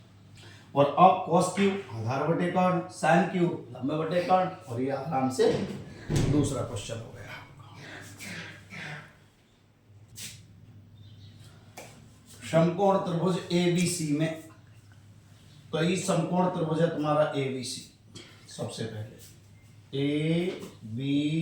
और अब cos Q आधार बटे कर्ण, sin Q लंब बटे कर्ण, और ये आराम से दूसरा क्वेश्चन हो गया। समकोण त्रिभुज ABC में, तो ये समकोण त्रिभुज है तुम्हारा ABC। सबसे पहले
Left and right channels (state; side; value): identical; both; correlation 1.00